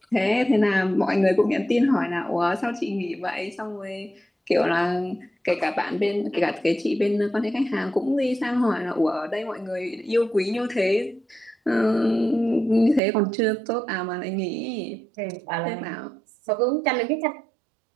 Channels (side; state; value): left; drops out; at 13.0 s